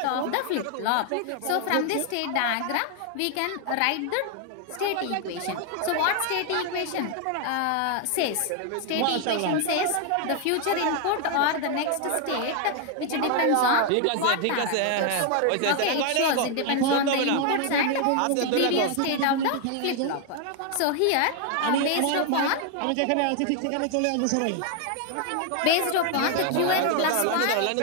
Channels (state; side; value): different; both; correlation 0.00